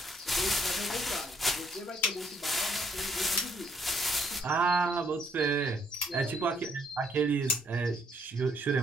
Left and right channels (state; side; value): normal; both; correlation 0.68